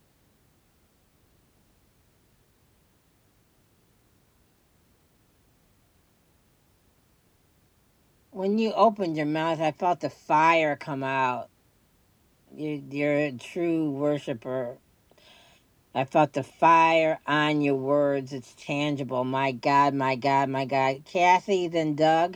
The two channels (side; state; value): both; identical; correlation 1.00